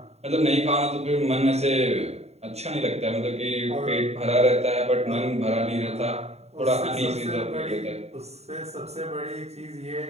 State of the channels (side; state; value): left; late; 0.31 ms